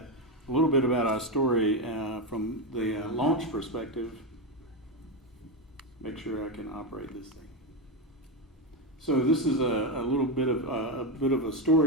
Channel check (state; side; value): normal; both; correlation 0.10